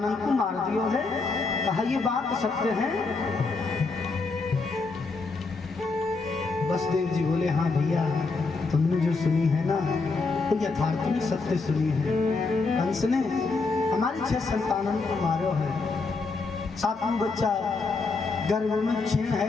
को मार दियो है। कहा ये बात सत्य है? वसुदेव जी बोले, हाँ भैया तुमने जो सुनी है ना तो यथार्थ में सत्य सुनी है। कंस ने हमारी 6 संतानों को मारो है। 7वां बच्चा गर्भ में क्षीण है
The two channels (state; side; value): quieter; right; 4.0 dB